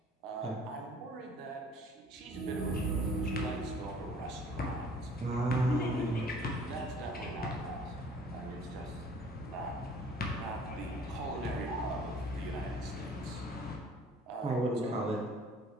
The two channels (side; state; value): both; normal; correlation 0.53